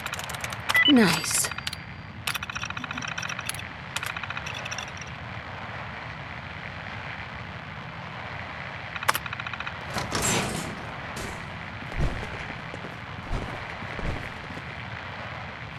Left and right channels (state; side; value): identical; both; correlation 1.00